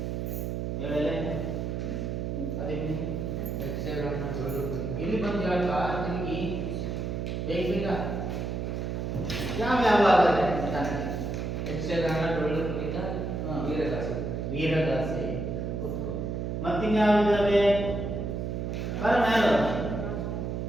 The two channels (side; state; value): right; noise; hum, 3 dB below the sound